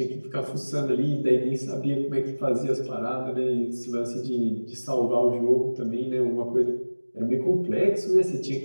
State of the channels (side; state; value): both; inverted; correlation -1.00